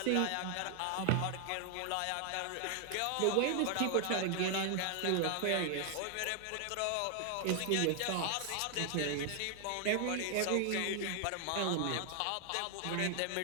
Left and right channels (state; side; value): different; both; correlation 0.00